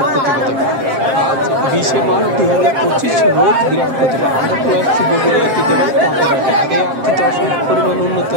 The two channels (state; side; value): late; left; 7.5 ms